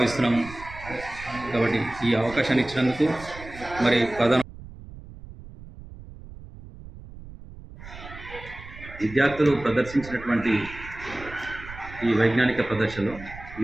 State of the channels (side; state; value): right; noise; rumble, 16 dB below the sound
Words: కాబట్టి ఈ అవకాశాన్ని ఇచ్చినందుకు మరి విద్యార్థులు ప్రదర్శించినటువంటి ఈ వైజ్ఞానిక ప్రదర్శనలో